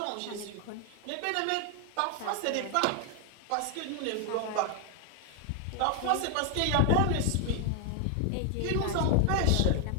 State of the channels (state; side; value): different; both; correlation 0.01